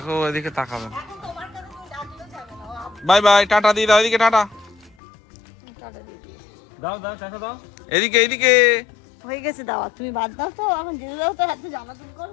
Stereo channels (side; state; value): right; drops out; at 5.0 s